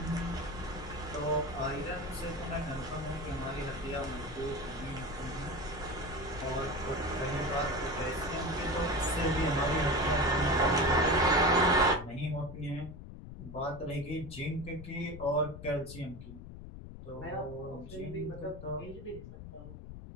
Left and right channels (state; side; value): noise; left; rumble, 12 dB below the sound